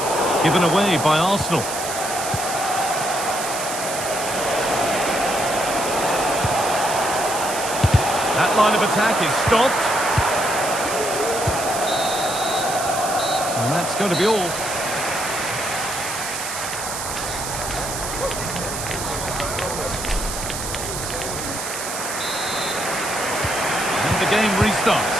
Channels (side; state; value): right; noise; hiss, 6 dB below the sound